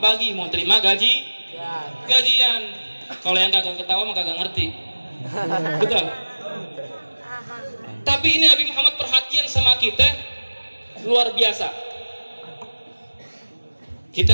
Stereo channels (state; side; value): inverted; both; correlation -1.00